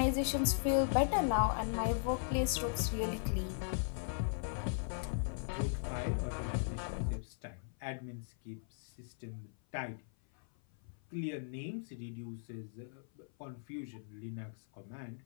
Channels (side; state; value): right; silent; 52 dB below the other